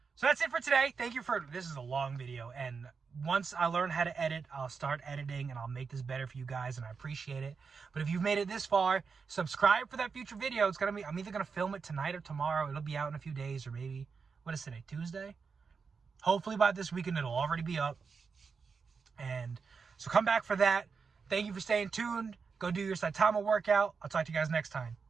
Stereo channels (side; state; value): left; quieter; 5.3 dB